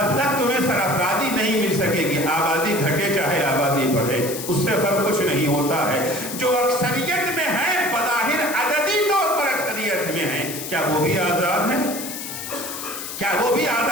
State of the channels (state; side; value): noise; left; hiss, 8 dB below the sound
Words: تک تمہیں سرافرادی نہیں مل سکے گی۔ آبادی گھٹے چاہے آبادی بڑھے، اس سے فرق کچھ نہیں ہوتا ہے۔ جو اکثریت میں ہیں، بظاہر عددی طور پر اکثریت میں ہیں، کیا وہ بھی آزاد ہیں؟ کیا وہ بھی